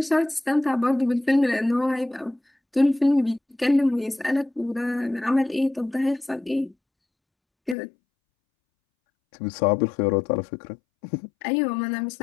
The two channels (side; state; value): right; drops out; at 7.8 s